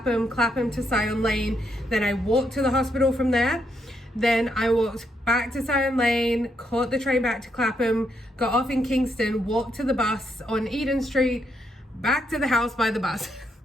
Clapham to Syon Lane. Then I walked to the hospital from there. Then I walked back to Syon Lane, caught the train back to Clapham, got off in Kingston, walked to the bus on Eden Street, back to the house by the bus.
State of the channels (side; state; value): both; normal; correlation 0.78